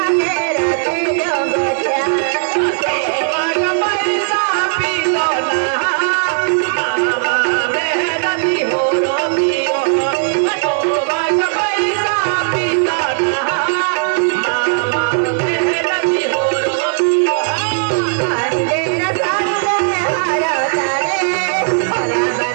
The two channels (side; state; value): left; silent; 69 dB below the other